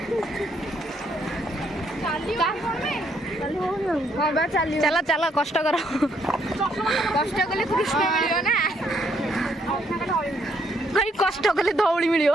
चला चला कष्ट कर कष्ट कले कृष्ण मिलियो ना भाई कष्ट कले धौली मिलियो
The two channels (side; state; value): both; normal; correlation 0.71